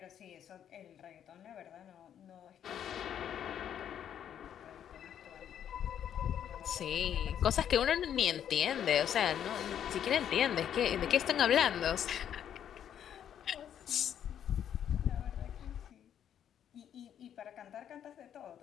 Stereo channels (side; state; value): right; quieter; 9.5 dB